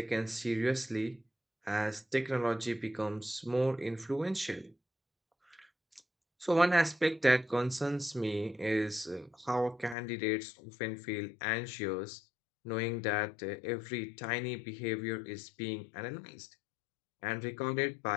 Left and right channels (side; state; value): right; drops out; at 10.0 s